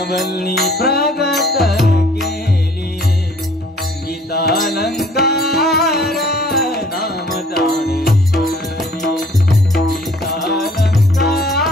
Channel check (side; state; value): both; normal; correlation 0.55